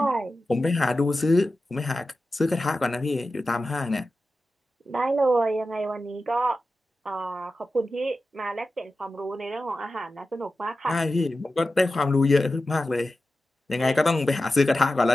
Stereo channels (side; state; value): both; normal; correlation 0.93